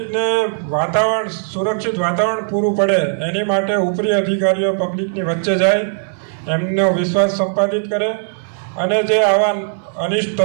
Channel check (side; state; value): left; silent; digital silence